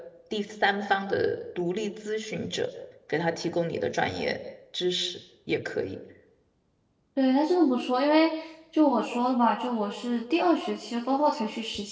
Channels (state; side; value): identical; both; correlation 1.00